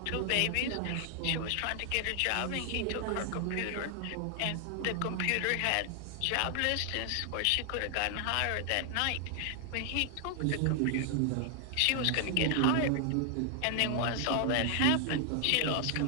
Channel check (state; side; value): different; both; correlation 0.00